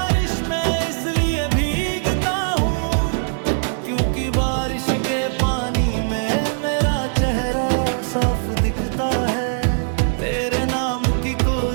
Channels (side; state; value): left; silent; digital silence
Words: में इसलिए भीगता हूँ क्योंकि बारिश के पानी में मेरा चेहरा साफ दिखता है। तेरे नाम की